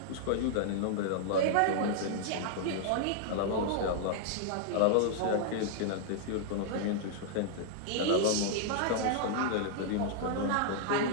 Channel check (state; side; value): different; both; correlation -0.01